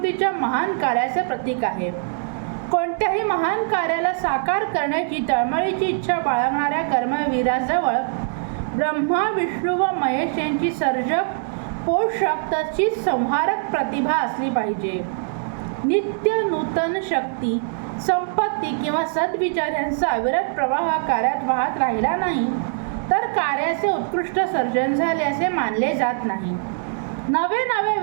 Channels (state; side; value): silent; left; digital silence